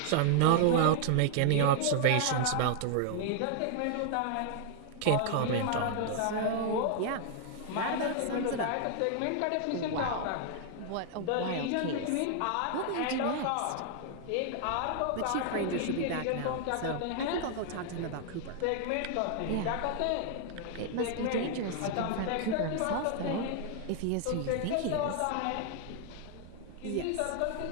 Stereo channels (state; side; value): different; both; correlation 0.00